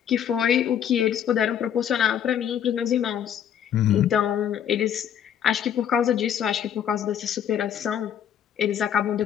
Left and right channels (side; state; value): right; quieter; 9.3 dB